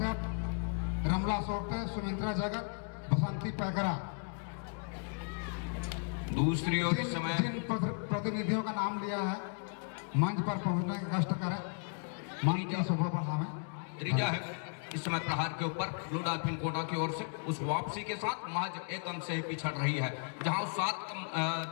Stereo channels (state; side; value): silent; right; 54 dB below the other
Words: रमला सोपटे, सुमित्रा जगत, बसंती पैकरा। दूसरी ओर इस समय जिन प्रतिनिधियों का नाम लिया है मंच पर पहुंचने का कष्ट करें, मंच की शोभा बढ़ावें। त्रीजा है इस समय प्रहार के ऊपर ब्लू डॉल्फिन कोटा की ओर से उस वापसी के साथ महज 1 अंक से ही पिछड़ रही है, जहां